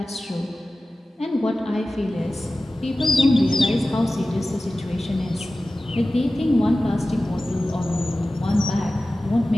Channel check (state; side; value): normal; both; correlation 0.96